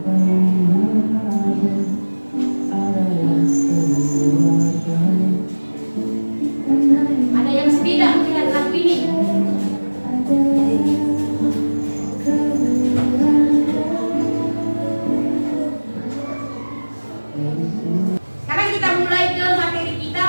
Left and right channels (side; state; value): both; inverted; correlation -1.00